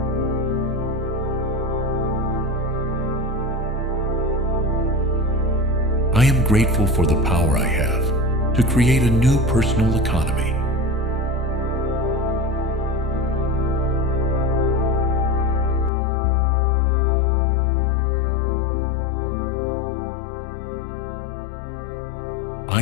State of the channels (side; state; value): right; drops out; at 15.9 s